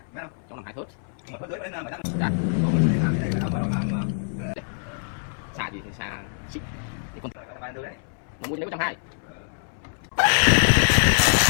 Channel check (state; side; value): silent; right; 62 dB below the other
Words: Trong làm 2 thớt. Mà phớt tới đến 7 thớt. Xả gì thì xả xích. Để con Vài đứa đấy. nó mua cho nếu 120.